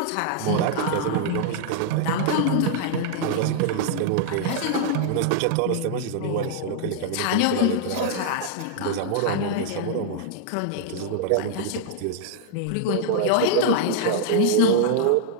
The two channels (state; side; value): different; both; correlation -0.01